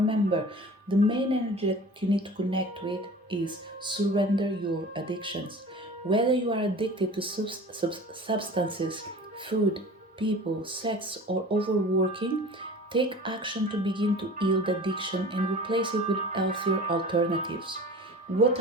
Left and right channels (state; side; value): normal; both; correlation 0.40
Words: the main energy that you need to connect with is surrender your addictions. Whether you are addicted to substances, food, people, sex, or overworking, take action to begin to heal the addiction and replace it with healthier alternatives. What